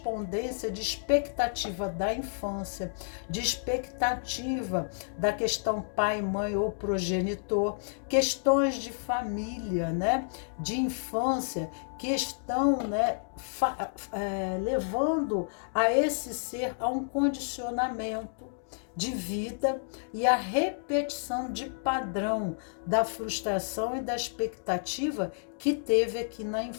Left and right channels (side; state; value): right; silent; digital silence